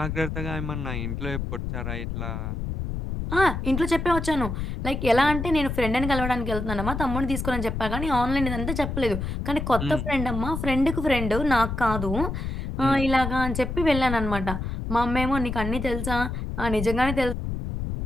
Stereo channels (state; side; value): noise; left; rumble, 4 dB below the sound